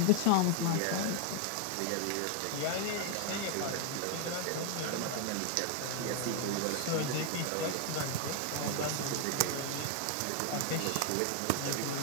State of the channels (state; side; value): different; both; correlation 0.00